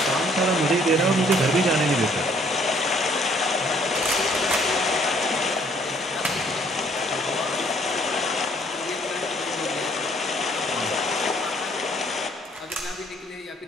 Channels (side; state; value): both; normal; correlation 0.63